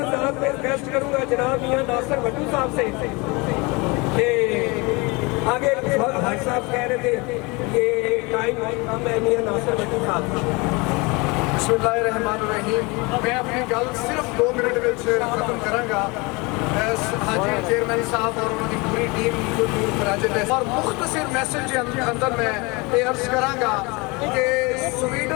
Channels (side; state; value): right; quieter; 26.6 dB